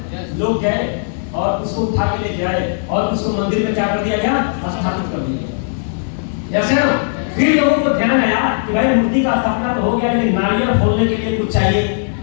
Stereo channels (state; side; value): silent; right; digital silence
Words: लोग गए और उसको उठा के लेके आए और उसको मंदिर में क्या कर दिया गया, स्थापित कर दिया गया। फिर लोगों को ध्यान आया कि भाई मूर्ति का स्थापना तो हो गया, लेकिन नारियल फोड़ने के लिए कुछ चाहिए।